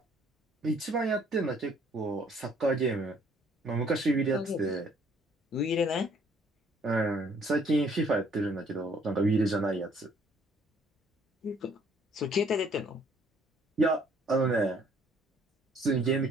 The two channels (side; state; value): both; normal; correlation 0.61